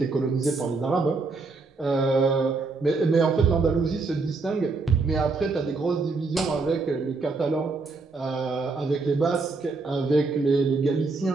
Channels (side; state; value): left; quieter; 3.9 dB